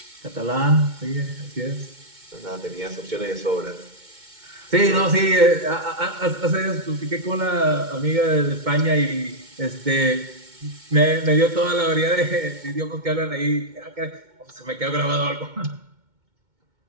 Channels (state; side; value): late; left; 2.2 ms